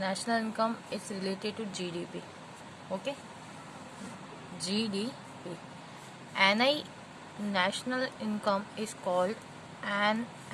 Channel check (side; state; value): both; identical; correlation 1.00